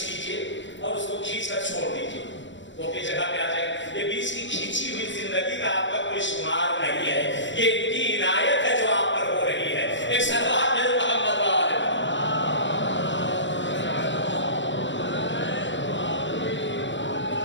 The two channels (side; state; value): right; late; 0.54 ms